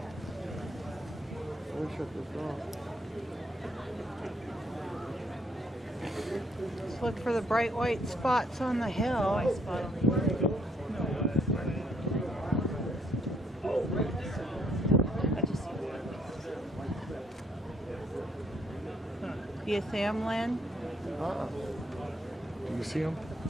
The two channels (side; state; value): both; normal; correlation 0.69